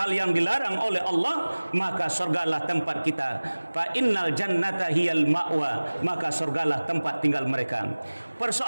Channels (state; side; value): inverted; both; correlation -1.00